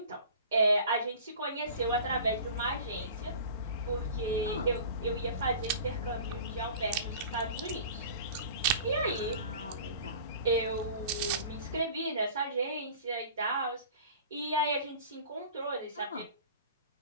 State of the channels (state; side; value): inverted; both; correlation -0.41